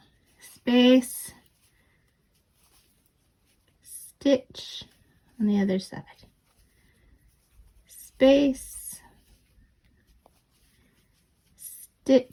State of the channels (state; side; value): identical; both; correlation 1.00